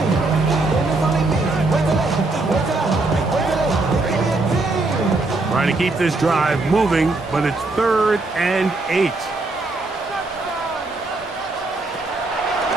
8. Trying to keep this drive moving, but it's 3rd and 8.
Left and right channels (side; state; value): left; quieter; 3.2 dB